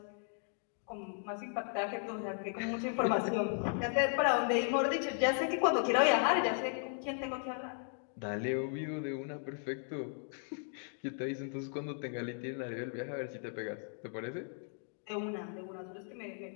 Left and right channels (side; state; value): right; silent; 54 dB below the other